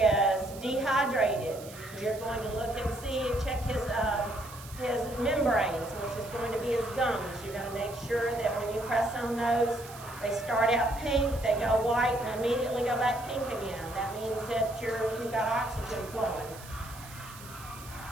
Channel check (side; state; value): right; noise; hiss, 17 dB below the sound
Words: dehydrated, you're going to look and see and check his membranes, which is going to be his gums. You're going to make sure that when you press on those, they start out pink, they go white, and immediately go back pink again. That means that you've got oxygen flowing.